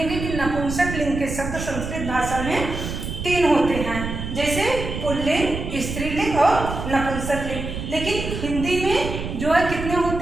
कि नपुंसक लिंग के शब्द संस्कृत भाषा में 3 होते हैं, जैसे पुल्लिंग, स्त्रीलिंग और नपुंसक लिंग। लेकिन हिंदी में जो है कितने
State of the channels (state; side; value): noise; right; rumble, 6 dB below the sound